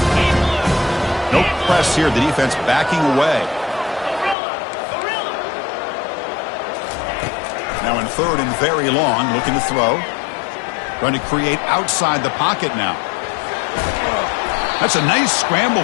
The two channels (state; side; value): drops out; right; at 4.4 s